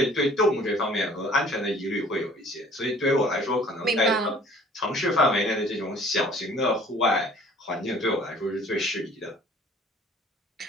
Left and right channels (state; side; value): normal; both; correlation 0.53